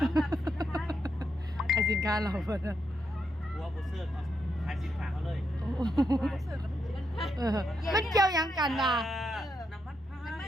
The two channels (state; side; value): normal; both; correlation 0.81